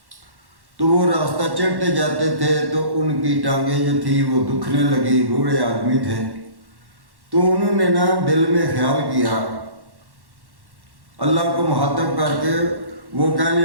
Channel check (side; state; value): left; late; 1.1 ms